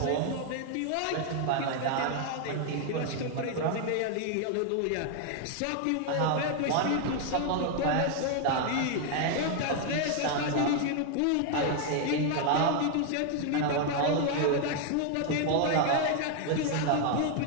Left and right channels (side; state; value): both; different; correlation 0.00